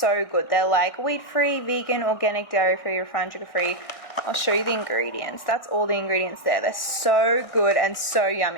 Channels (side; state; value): right; late; 1.6 ms